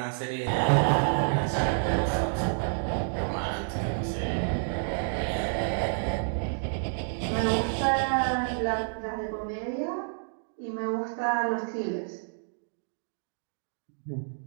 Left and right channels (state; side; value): silent; left; digital silence